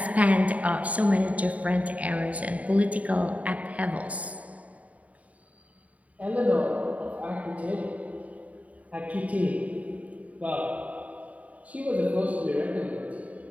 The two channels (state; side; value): late; left; 0.069 ms